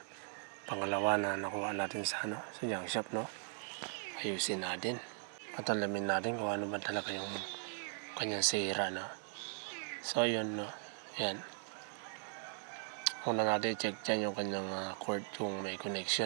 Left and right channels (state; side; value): silent; left; 52 dB below the other